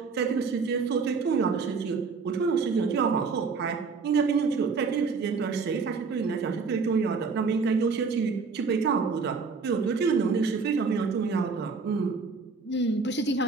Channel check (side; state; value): left; quieter; 4.8 dB